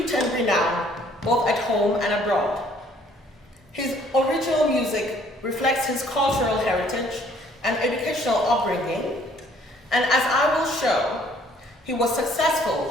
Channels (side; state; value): both; normal; correlation 0.61